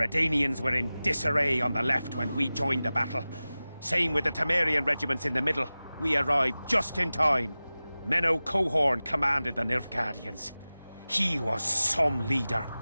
were in disarray on the left when we joined the battle. Same with the Temerian regiments in the middle. We arrived just in time. Menno Cohorn commanded the Nilfgaardians. He was some leader.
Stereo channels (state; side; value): inverted; both; correlation -0.97